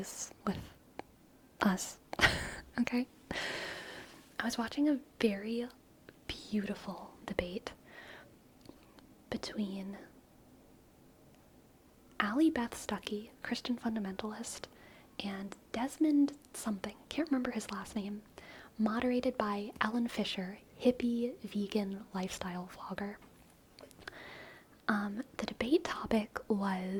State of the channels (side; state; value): both; identical; correlation 1.00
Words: with us. Okay? I was watching a very beautiful debate between Allie Beth Stuckey, Christian fundamentalist, and Desmond something, can't remember his last name, moderated by Ellen Fisher, hippie vegan lifestyle vlogger. The debate topic